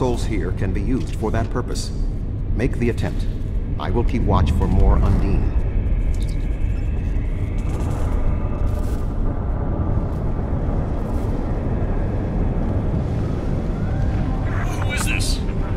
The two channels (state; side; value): identical; both; correlation 1.00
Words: here can be used for that purpose. Make the attempt. I will keep watch for more Undine. Who is this?